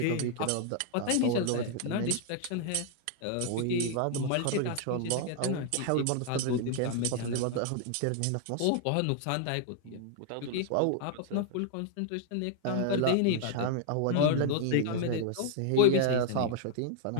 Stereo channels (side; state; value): both; different; correlation 0.00